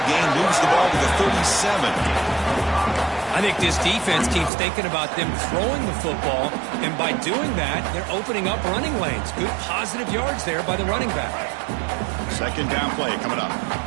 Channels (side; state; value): left; drops out; at 4.5 s